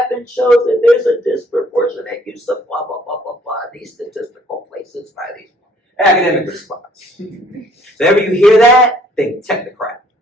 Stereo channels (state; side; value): normal; both; correlation 0.61